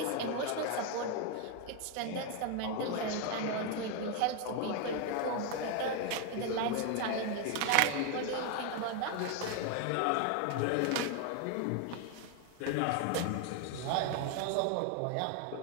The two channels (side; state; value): both; different; correlation 0.01